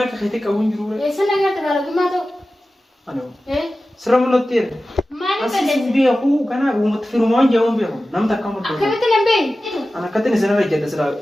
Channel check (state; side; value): normal; both; correlation 0.95